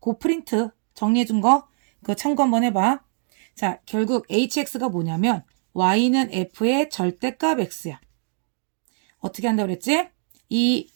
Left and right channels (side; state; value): left; silent; 55 dB below the other